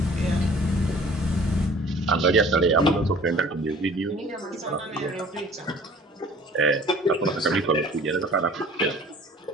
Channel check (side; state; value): both; normal; correlation 0.50